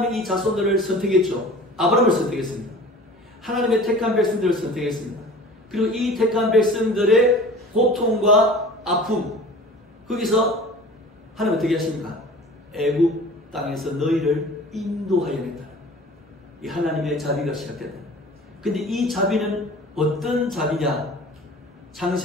이 자손들을 선택했죠. 아브라함을 선택했습니다. 하나님의 택한 백성들을 선택했습니다. 그리고 이 택한 백성들의 고통과 아픔, 거기서 하나님 어떻게 하십니까? 애굽 땅에서 너희를 인도하여 낸다. 이 하나님의 자비가 시작된다. 근데 이 자비는 어떤 자비냐?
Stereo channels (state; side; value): normal; both; correlation 0.42